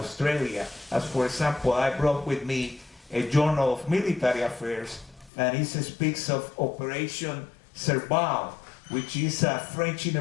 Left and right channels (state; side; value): drops out; right; at 5.3 s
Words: As for example, I brought with me a journal of military affairs, and it speaks of Operation Serval, which is a French